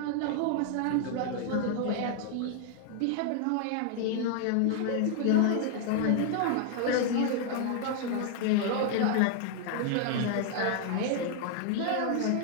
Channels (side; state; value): both; different; correlation 0.00